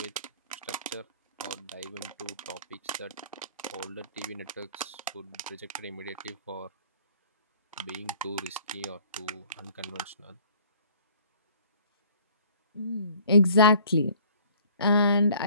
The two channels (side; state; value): both; inverted; correlation -0.54